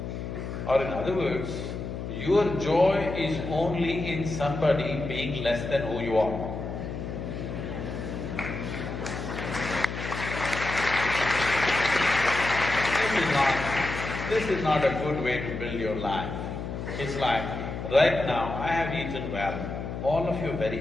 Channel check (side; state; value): left; noise; hum, 6 dB below the sound